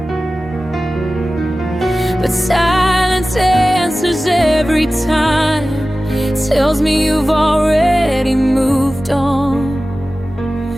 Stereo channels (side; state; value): both; normal; correlation 0.96